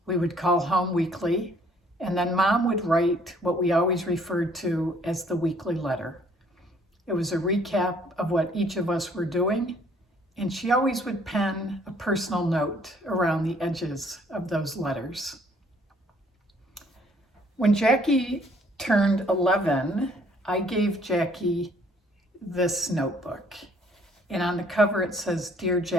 we would call home weekly, and then Mom would write what we always referred to as the weekly letter. It was a recap of what each of us were doing, and she always would pen a personal note around the edges of those letters. When Jackie turned 11, I gave Jackie this notebook, and on the cover it says, "Dear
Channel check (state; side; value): normal; both; correlation 0.61